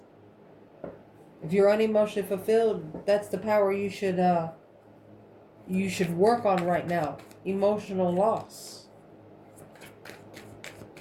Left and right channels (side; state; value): both; identical; correlation 1.00